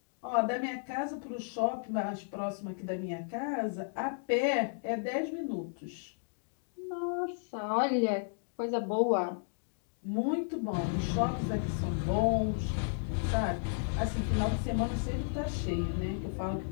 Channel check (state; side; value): silent; right; digital silence